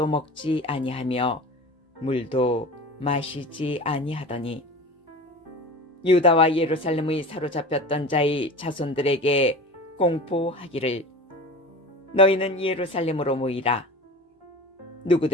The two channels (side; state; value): both; normal; correlation 0.34